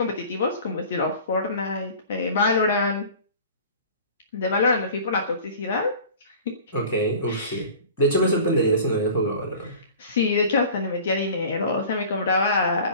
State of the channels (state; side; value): inverted; both; correlation -0.43